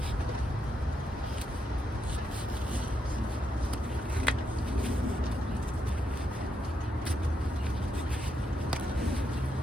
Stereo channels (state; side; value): normal; both; correlation 0.80